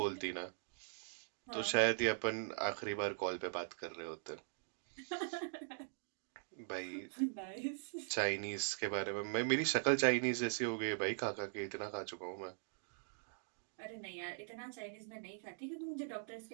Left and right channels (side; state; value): left; silent; digital silence